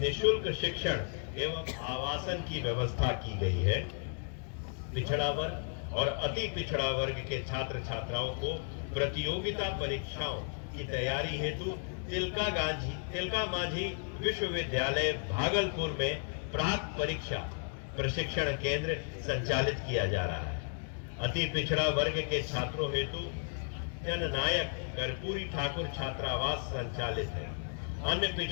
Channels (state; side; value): silent; right; 55 dB below the other